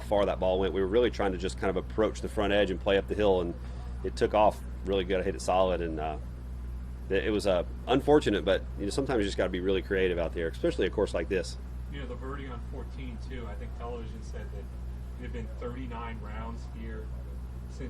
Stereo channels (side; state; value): both; identical; correlation 1.00